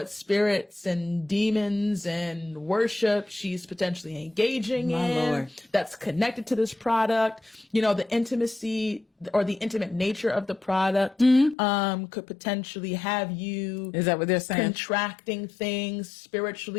spirits and demons and worship she's potentially engaging in that's connected to this product. You know, the intimacy or the intimate nature of the product could potentially have you, is that what they're saying? Contracting things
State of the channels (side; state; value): right; drops out; at 11.6 s